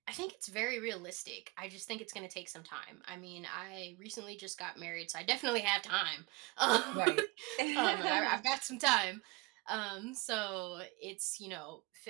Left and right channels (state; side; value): quieter; left; 25.1 dB